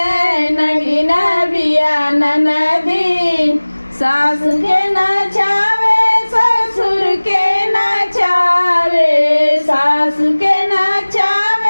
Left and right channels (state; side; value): inverted; both; correlation -1.00